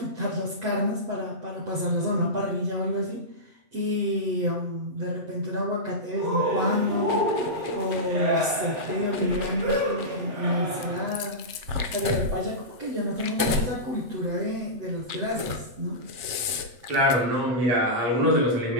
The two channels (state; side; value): late; left; 7.5 ms